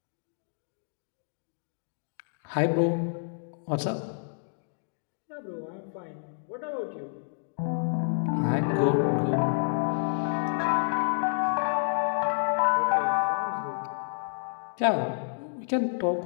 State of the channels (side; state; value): right; silent; digital silence